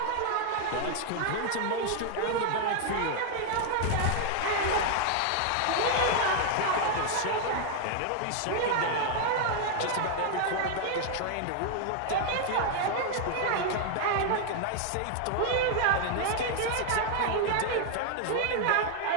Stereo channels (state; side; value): different; both; correlation 0.00